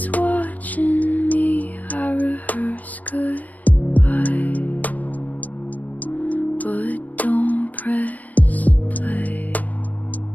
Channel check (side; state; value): right; late; 0.076 ms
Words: watching me. I rehearse goodbye, but don't press play.